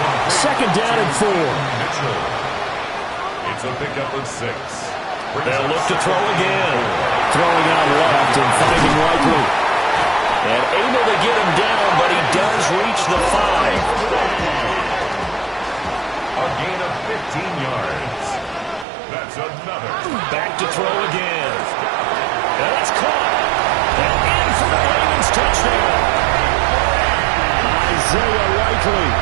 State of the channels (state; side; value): drops out; left; at 18.9 s